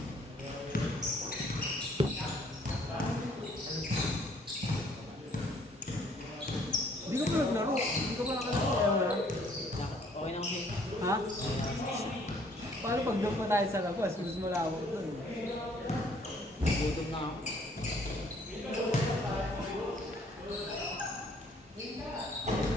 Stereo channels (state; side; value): normal; both; correlation 0.62